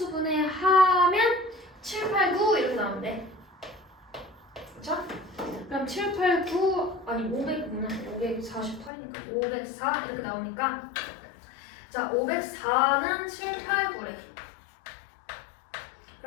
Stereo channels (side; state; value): right; drops out; at 8.9 s